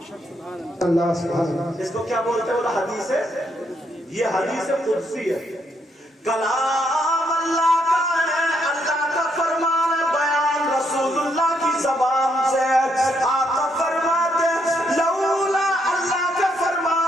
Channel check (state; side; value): normal; both; correlation 0.75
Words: اللہ سبحان اللہ. اس کو کیا بولتے ہیں؟ وہ حدیث ہے، یہ حدیث قدسی ہے. کلام اللہ کا ہے، اللہ کا فرمان ہے، بیان رسول اللہ کی زبان سے. آقا فرماتے ہیں لولا، اللہ کا